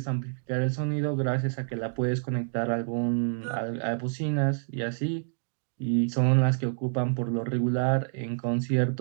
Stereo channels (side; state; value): left; silent; digital silence